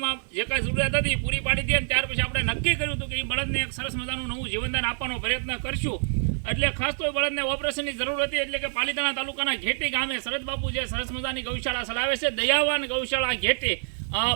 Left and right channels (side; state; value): left; silent; 60 dB below the other